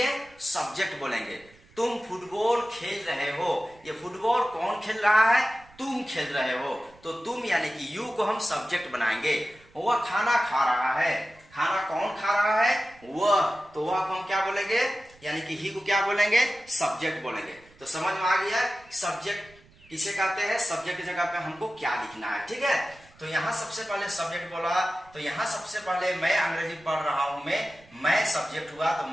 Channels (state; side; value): noise; right; rumble, 27 dB below the sound